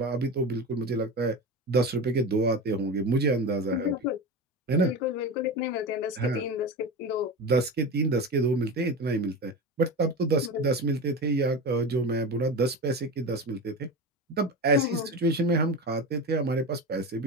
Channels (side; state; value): both; normal; correlation 0.25